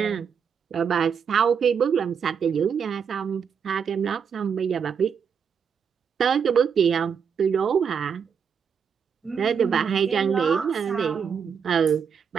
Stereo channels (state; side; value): quieter; left; 6.9 dB